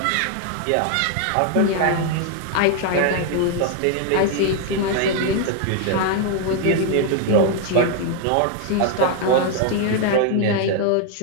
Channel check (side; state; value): both; different; correlation 0.00